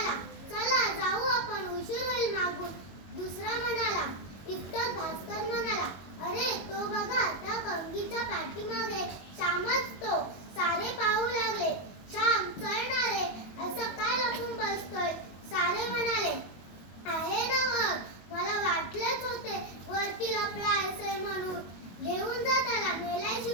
चला जाऊ आपण, उशीर होईल मागून. दुसरा म्हणाला. इतक्यात भास्कर म्हणाला, अरे तो बघा, त्या कंगीच्या पाठीमागे श्यामच तो. सारे पाहू लागले. श्याम चढणार रे, असं काय लपून बसतोय? सारे म्हणाले, आहे ना मग, मला वाटलेच होते वरती लपला असे म्हणून. घेऊन जा त्याला,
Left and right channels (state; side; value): late; right; 22 ms